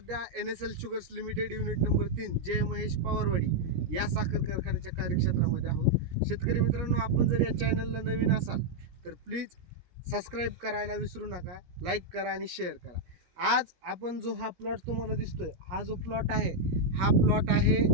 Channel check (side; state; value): left; late; 17 ms